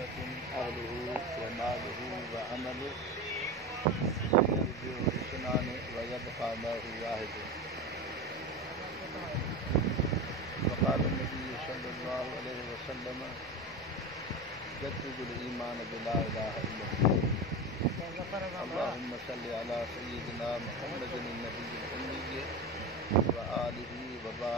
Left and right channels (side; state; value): both; normal; correlation 0.23